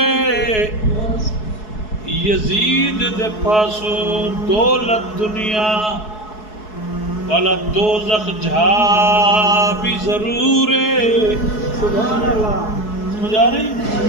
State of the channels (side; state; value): right; late; 4.7 ms